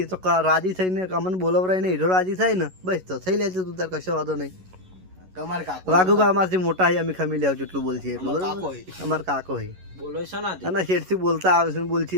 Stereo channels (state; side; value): late; left; 11 ms